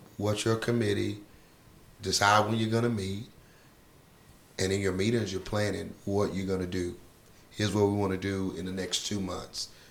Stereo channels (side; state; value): both; identical; correlation 1.00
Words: what's your committee, decide when you're going to meet, and in your meetings you're planning what you're going to do. Here's what we want to do in the next 2 months